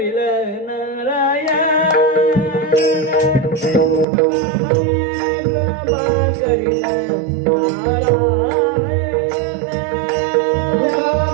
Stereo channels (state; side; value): drops out; left; at 4.0 s